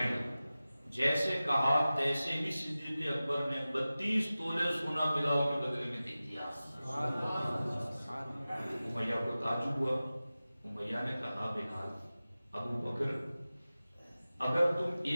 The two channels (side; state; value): both; inverted; correlation -0.96